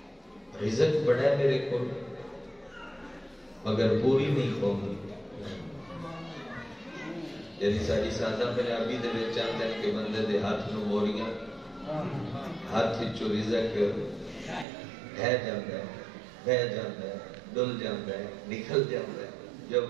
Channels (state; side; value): drops out; left; at 14.7 s